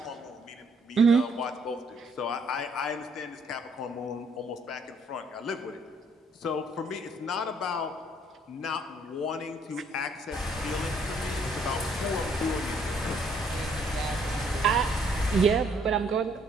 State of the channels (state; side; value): normal; both; correlation 0.66